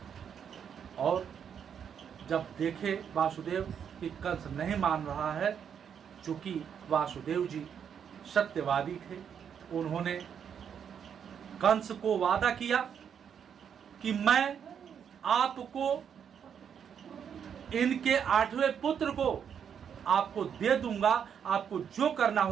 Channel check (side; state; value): left; quieter; 7.9 dB